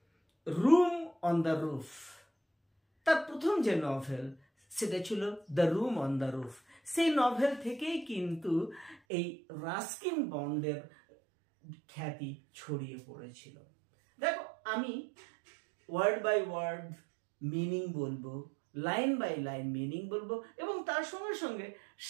room on the roof, তার প্রথম যে নভেল সেটা ছিল the room on the roof. সেই নভেল থেকেই কিন্তু এই রাস্কিন বন্ডের খ্যাতি ছড়িয়ে পড়েছিল। দেখো, আমি ওয়ার্ড বাই ওয়ার্ড মিনিং বলবো, লাইন বাই লাইন মিনিং বলবো, এবং তার সঙ্গে সঙ্গে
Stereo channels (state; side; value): drops out; left; at 9.0 s